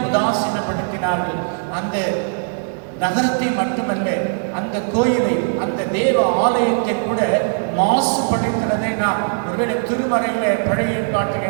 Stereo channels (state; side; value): silent; left; digital silence